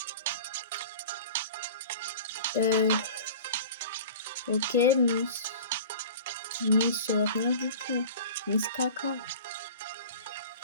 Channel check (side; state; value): both; inverted; correlation -0.39